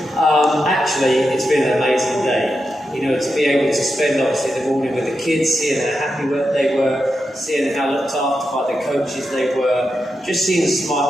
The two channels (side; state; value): both; normal; correlation 0.88